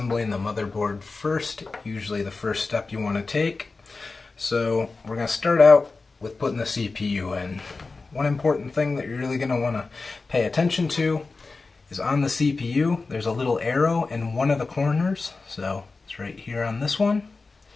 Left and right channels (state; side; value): quieter; right; 3.9 dB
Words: the motherboard first. Usually the first step you want to take. So we're going to start out with putting the CPU in. One important thing that you're really going to want to pay attention to is on the CPU there's a little arrow in one of the corners. So it's right here on this one.